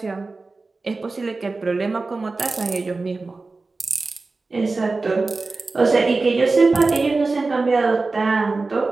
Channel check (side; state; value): left; quieter; 3.7 dB